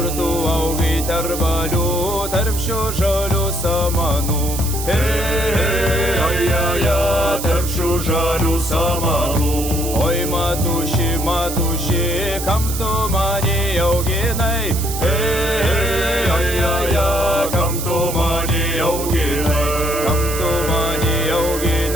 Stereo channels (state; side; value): noise; right; hiss, 7 dB below the sound